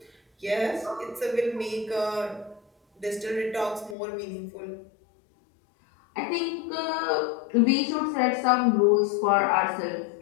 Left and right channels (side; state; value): right; drops out; at 4.0 s